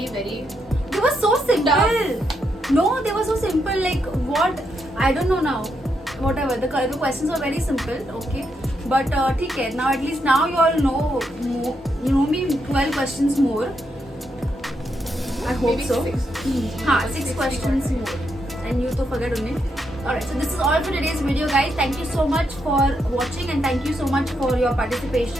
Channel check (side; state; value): both; normal; correlation 0.80